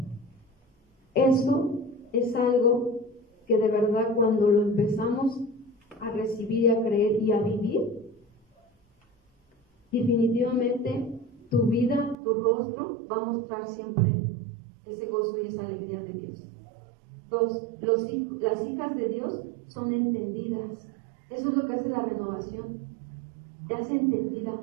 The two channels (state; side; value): drops out; left; at 12.2 s